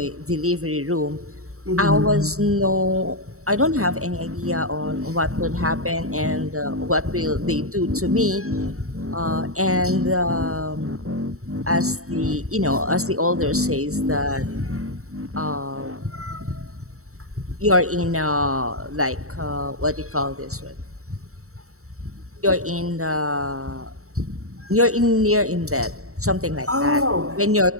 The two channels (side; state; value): left; late; 0.64 ms